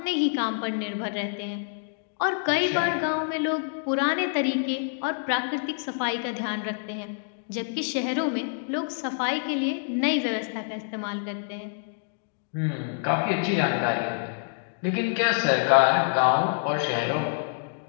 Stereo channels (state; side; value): silent; right; digital silence